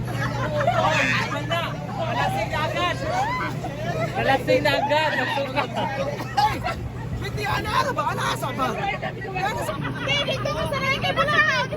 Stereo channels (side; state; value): both; identical; correlation 1.00